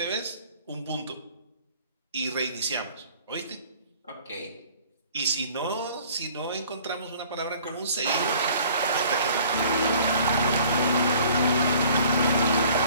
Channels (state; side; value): inverted; both; correlation -0.52